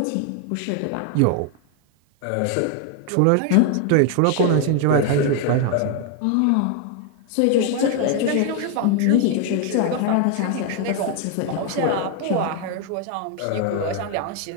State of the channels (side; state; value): both; different; correlation 0.01